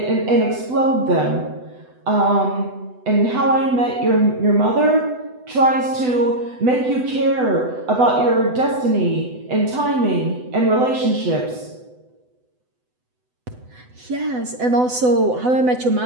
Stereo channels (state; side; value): late; left; 8.0 ms